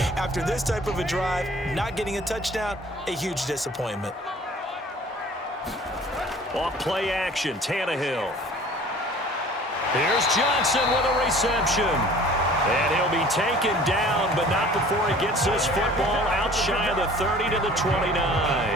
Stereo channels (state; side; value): normal; both; correlation 0.48